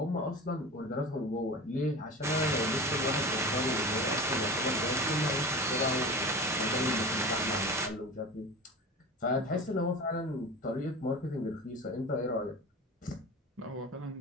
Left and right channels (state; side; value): normal; both; correlation 0.33